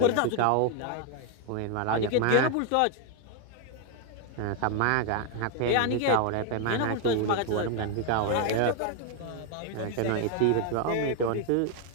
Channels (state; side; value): different; both; correlation 0.00